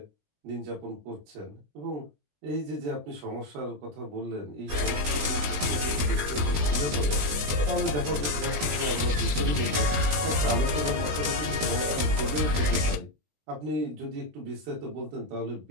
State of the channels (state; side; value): late; left; 20 ms